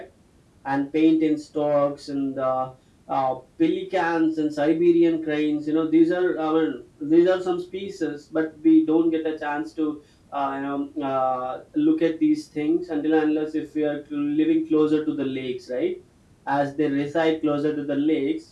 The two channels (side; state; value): both; identical; correlation 1.00